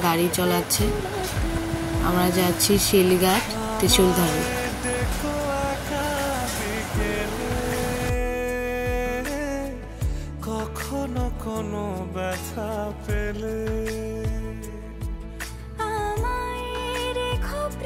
গাড়ি চালাচ্ছে। আমরা যাচ্ছি শিলঘাট ত্রিশূলধারী। কখনো কোনো ব্যথা পেলে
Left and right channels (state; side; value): identical; both; correlation 1.00